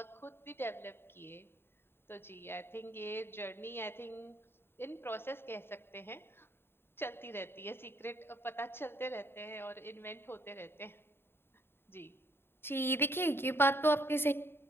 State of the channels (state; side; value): late; right; 0.11 ms